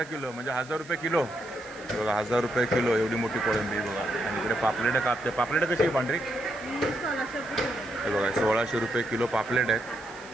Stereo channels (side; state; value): right; noise; hiss, 22 dB below the sound